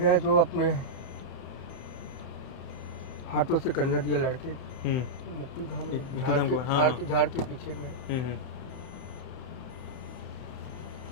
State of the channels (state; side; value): late; right; 31 ms